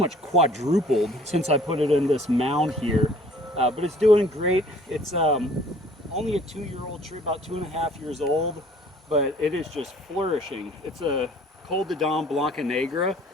quadrupled since I put it in this mound here. But it's doing great. It's only a 2-year-old tree, about 2.5 years old, but it is just flourishing. It's a Col de Dom Blanca Negra,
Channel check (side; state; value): both; normal; correlation 0.54